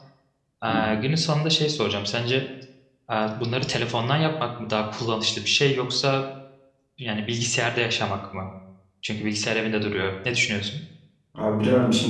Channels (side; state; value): both; identical; correlation 1.00